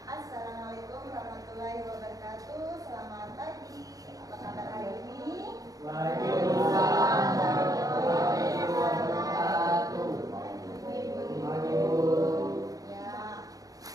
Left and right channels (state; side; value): late; left; 0.17 ms